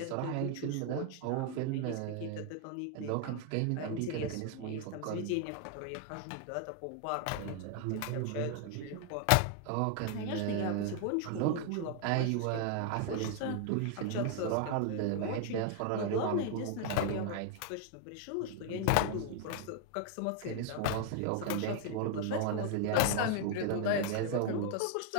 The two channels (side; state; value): both; different; correlation 0.00